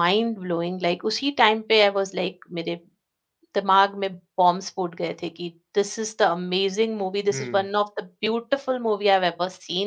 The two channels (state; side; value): identical; both; correlation 1.00